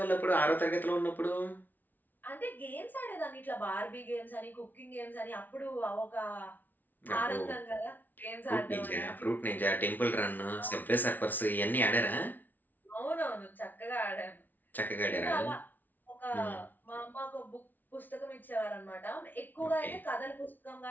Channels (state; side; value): late; right; 0.083 ms